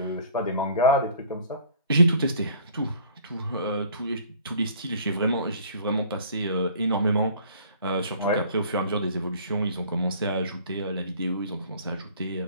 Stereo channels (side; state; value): both; inverted; correlation -0.51